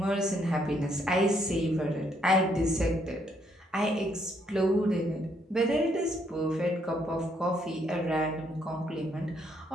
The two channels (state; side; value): normal; both; correlation 0.71